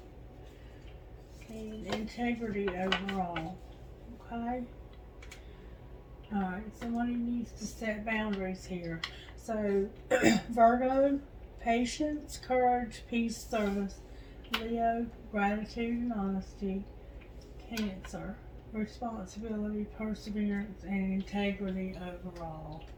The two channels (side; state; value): both; identical; correlation 1.00